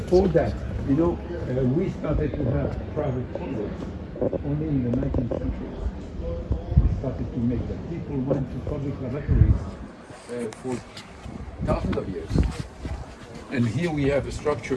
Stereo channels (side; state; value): both; identical; correlation 1.00